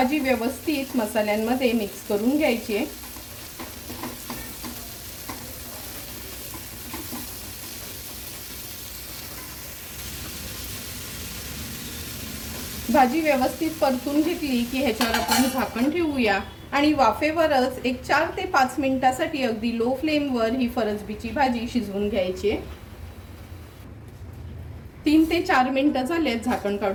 व्यवस्थित मसाल्यांमध्ये मिक्स करून घ्यायची आहे. भाजी व्यवस्थित परतून घेतली की ह्याच्यावर आपण झाकण ठेवूया आणि वाफेवरच एक 4 ते 5 मिनिटासाठी अगदी लो फ्लेमवर ही फरसबीची भाजी शिजवून घ्यायची आहे. 3 ते 4 मिनिटं झालेत, झाकण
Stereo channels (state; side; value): identical; both; correlation 1.00